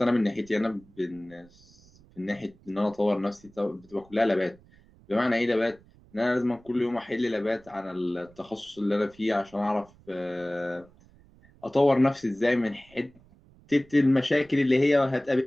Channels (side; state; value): right; noise; rumble, 27 dB below the sound